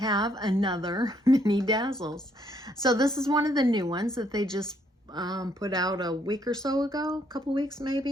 another Mini Dazzles. So this is one of the new ones that they just put out a week or so ago, a couple weeks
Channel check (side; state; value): both; normal; correlation 0.70